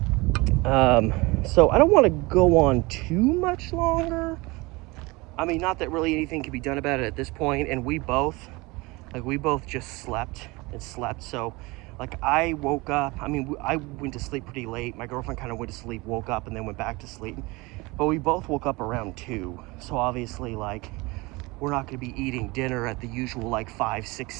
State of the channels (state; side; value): quieter; left; 23.9 dB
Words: So I don't want to go on too much longer. I mean, not that really anything can be done about it at this point, and we both just slept and slept. So like, I woke up, I mean, I went to sleep pretty late. My girlfriend kind of went to sleep, woke up, and then went back to sleep. But we both woke up around 2. So obviously, like, we're not going to be eating dinner at the usual like 5, 6,